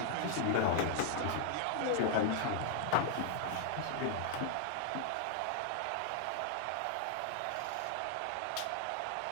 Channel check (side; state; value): both; different; correlation 0.00